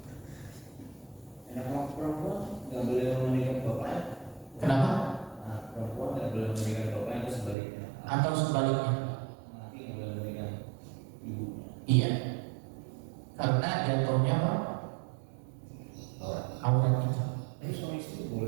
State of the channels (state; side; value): drops out; left; at 7.6 s